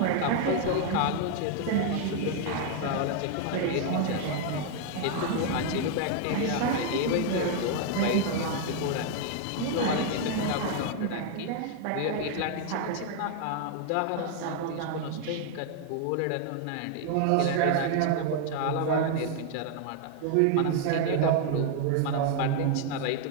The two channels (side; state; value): both; different; correlation 0.00